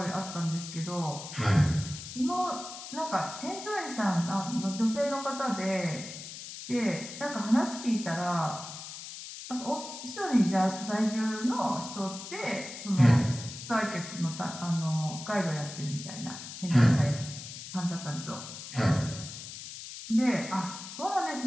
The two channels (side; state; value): left; noise; hiss, 11 dB below the sound